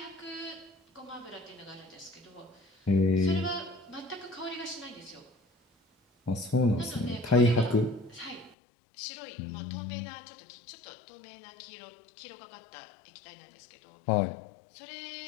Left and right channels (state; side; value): drops out; right; at 8.6 s